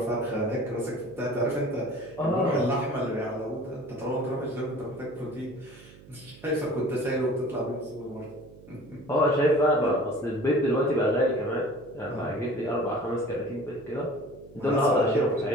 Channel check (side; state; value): right; noise; hum, 21 dB below the sound